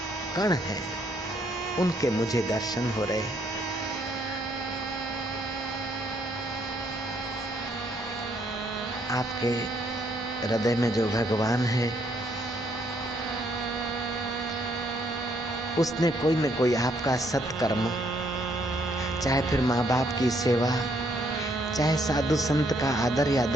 कण हैं उनके मुझे दर्शन हो रहे हैं। आपके हृदय में जो भगवान है उसने कोई न कोई आपका सत्कर्म, चाहे फिर माँ बाप की सेवा, चाहे साधु संत का आदर या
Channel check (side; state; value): both; normal; correlation 0.69